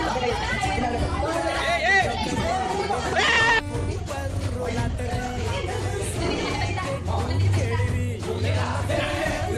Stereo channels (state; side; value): identical; both; correlation 1.00